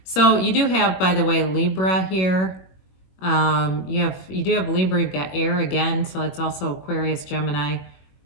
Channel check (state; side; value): late; right; 22 ms